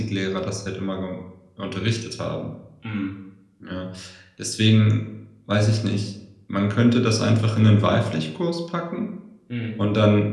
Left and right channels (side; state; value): both; identical; correlation 1.00